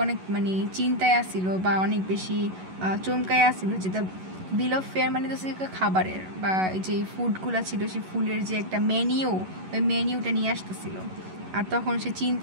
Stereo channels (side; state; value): left; late; 11 ms